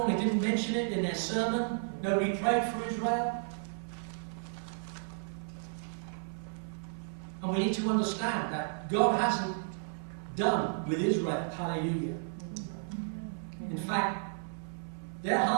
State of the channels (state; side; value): silent; left; 56 dB below the other